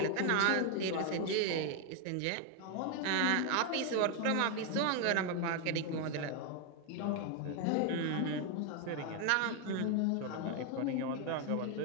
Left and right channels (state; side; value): different; both; correlation 0.01